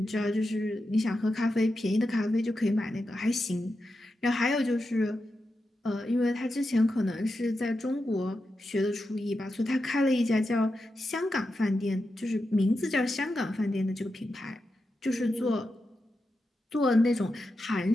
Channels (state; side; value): normal; both; correlation 0.89